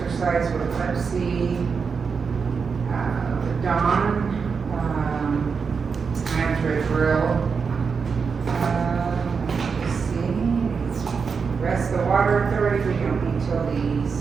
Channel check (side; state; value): left; quieter; 5.6 dB